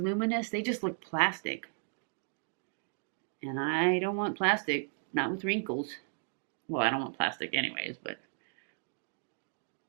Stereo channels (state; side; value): silent; left; 55 dB below the other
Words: they just look plastic. And I don't want plastic, not with wrinkles. Well, I don't want plastic anyways, but